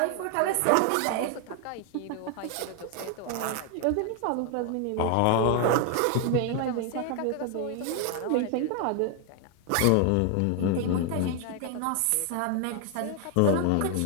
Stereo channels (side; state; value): both; different; correlation 0.00